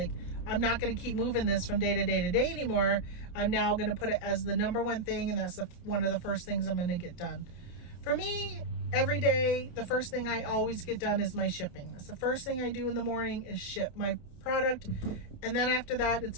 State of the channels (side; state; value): right; late; 28 ms